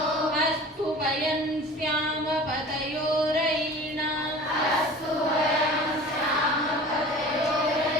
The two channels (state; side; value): normal; both; correlation 0.40